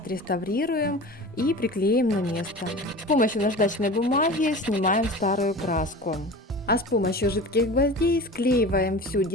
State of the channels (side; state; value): both; normal; correlation 0.35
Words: и приклеим на место. С помощью наждачной бумаги снимаем старую краску. А с помощью жидких гвоздей склеиваем всю